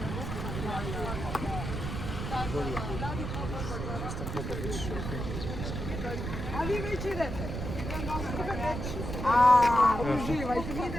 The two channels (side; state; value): right; noise; rumble, 5 dB below the sound